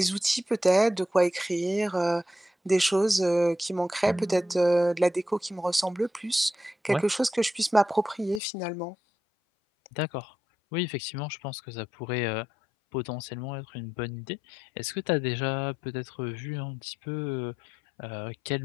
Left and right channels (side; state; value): right; drops out; at 8.4 s